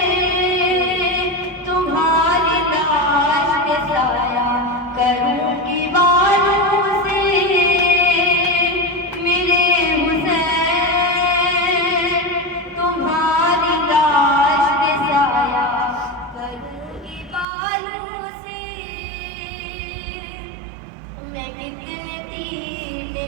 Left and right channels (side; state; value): left; drops out; at 17.4 s